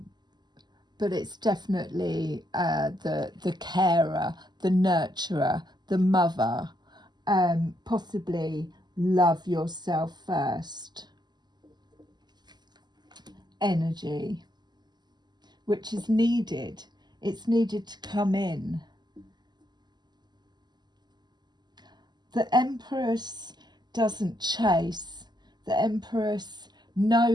But it's definitely the carer, the nurturer, the mother. Possibly love yourself first. Energy. which is needed. It's needed to come in. The Empress doesn't chase. The Empress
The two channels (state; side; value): late; left; 0.21 ms